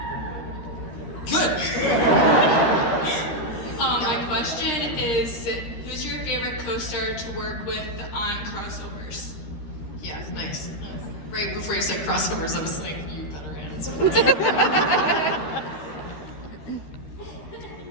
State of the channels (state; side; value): late; right; 13 ms